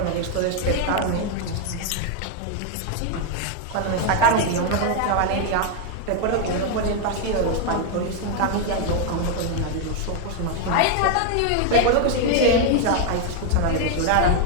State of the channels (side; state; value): both; different; correlation 0.01